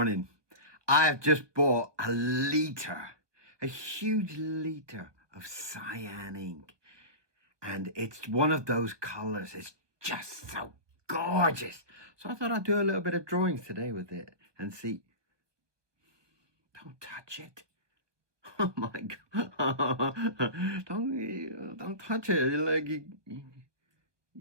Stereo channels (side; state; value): left; late; 1.2 ms